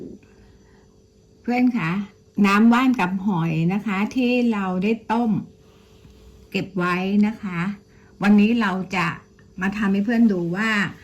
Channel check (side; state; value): both; identical; correlation 1.00